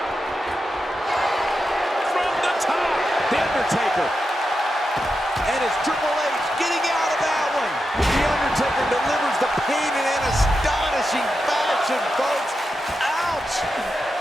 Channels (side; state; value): both; normal; correlation 0.88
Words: From the top. The Undertaker. And it's Triple H getting out of that one. delivers the pain in an astonishing fashion, folks. Ouch!